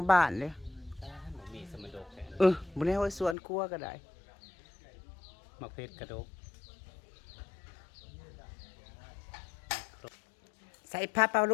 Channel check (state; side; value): drops out; right; at 3.4 s